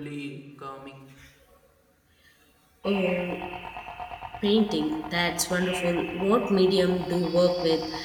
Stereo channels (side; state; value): both; identical; correlation 1.00